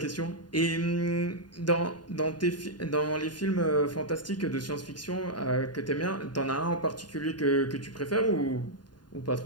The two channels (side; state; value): right; late; 0.70 ms